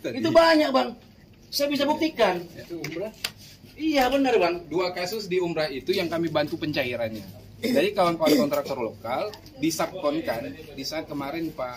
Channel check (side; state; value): both; identical; correlation 1.00